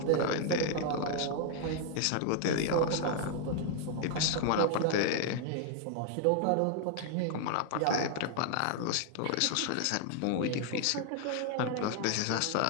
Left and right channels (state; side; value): different; both; correlation 0.00